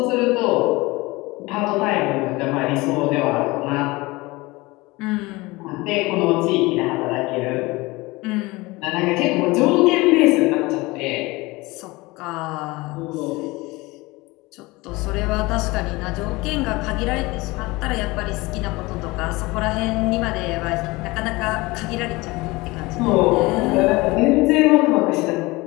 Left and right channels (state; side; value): quieter; right; 22.2 dB